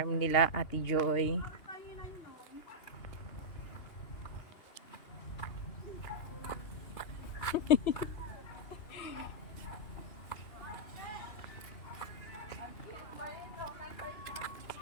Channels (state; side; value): late; right; 2.8 ms